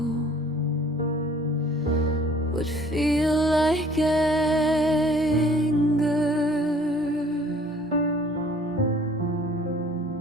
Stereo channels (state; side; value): normal; both; correlation 0.54